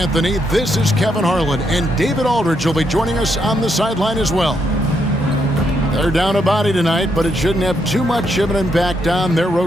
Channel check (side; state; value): both; normal; correlation 0.77